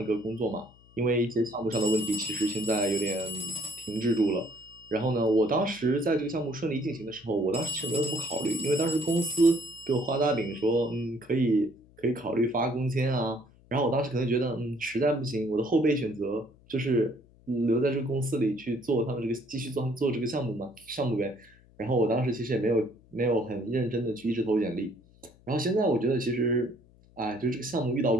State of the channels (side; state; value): left; noise; hum, 27 dB below the sound